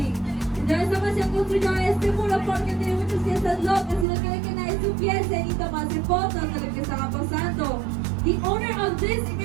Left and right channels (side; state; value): left; drops out; at 4.0 s